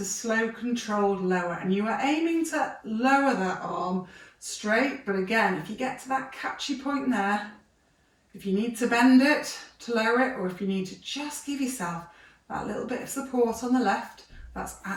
slow controlled lower, and you are aiming to lower that arm straight, but again, if you get to that catchy point there, If you need to bend it to lower it, or if you need to just give yourself that little bit of support on the left, that's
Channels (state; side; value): identical; both; correlation 1.00